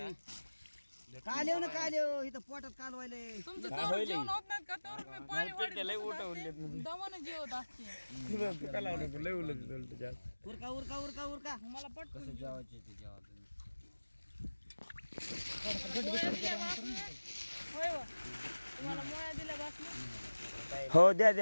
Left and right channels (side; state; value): both; inverted; correlation -1.00